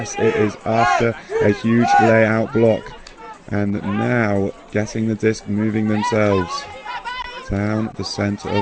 it is after a huge layout block. And now getting the disc moving themselves down the center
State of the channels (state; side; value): identical; both; correlation 1.00